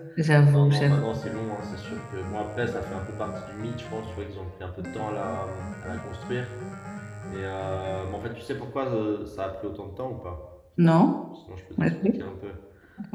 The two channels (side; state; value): both; identical; correlation 1.00